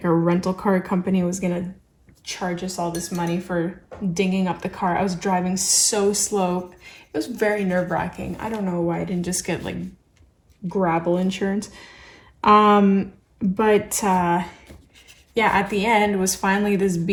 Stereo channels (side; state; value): both; identical; correlation 1.00